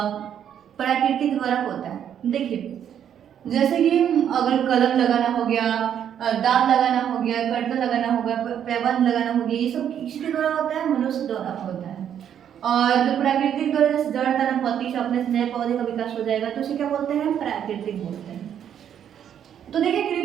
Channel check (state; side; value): quieter; left; 9.3 dB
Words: प्राकृतिक द्वारा होता है। देखिए जैसे कि अगर कलम लगाना हो गया, दांत लगाना हो गया, कर्तन लगाना हो गया, पैबंद लगाना हो गया, ये सब किसके द्वारा होता है, मनुष्य द्वारा होता है। और जो प्राकृतिक द्वारा जैसे जड़, तना, पत्ती से अपने नए पौधे का विकास हो जाएगा, तो उसे क्या बोलते हैं, प्राकृतिक बोलते हैं। तो देखिए